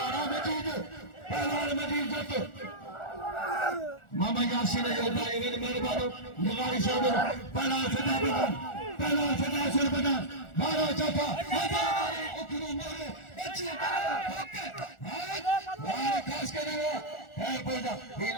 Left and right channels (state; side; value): late; right; 1.4 ms